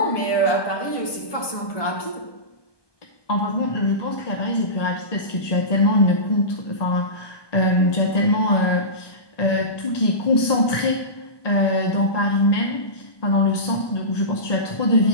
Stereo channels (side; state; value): right; late; 1.2 ms